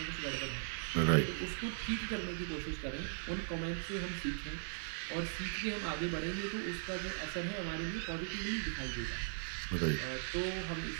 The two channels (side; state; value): left; silent; 52 dB below the other